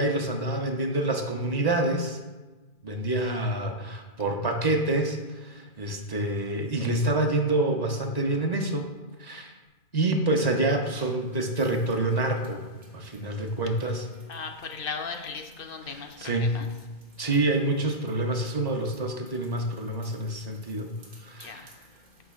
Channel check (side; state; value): right; late; 1.9 ms